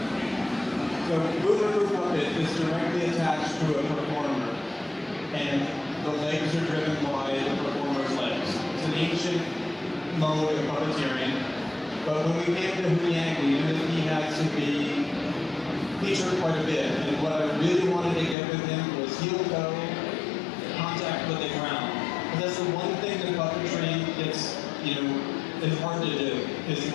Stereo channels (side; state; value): right; drops out; at 18.4 s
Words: So boomer crew puppet is directly attached to a performer, and the legs are driven by the performer's legs. It's an ancient mode of puppeteering, but when we came to Huyang, we knew that he had to be featured quite a bit, and what I really wanted to get with him was heel-toe contact with the ground. And that's the one thing that puppetry is hard to do, is to